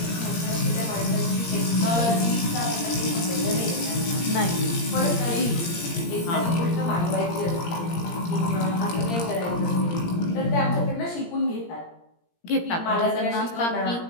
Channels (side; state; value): right; late; 17 ms